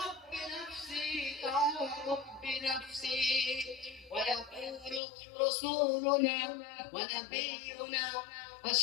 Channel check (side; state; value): right; drops out; at 5.0 s